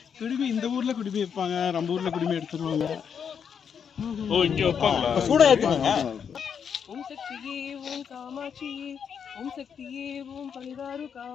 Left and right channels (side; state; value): right; quieter; 7.3 dB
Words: குடுமி இந்த ஊர்ல குடுமி வைப்பாங்க நம்ம ஊர்ல குடுமி எடுத்துருவாங்க ஓ இங்க வைப்பாங்களா சூடா ஏத்துவாங்க ஓம் சக்தியே ஓம் காமாட்சியே ஓம் சக்தியே ஓம் பரிதாரு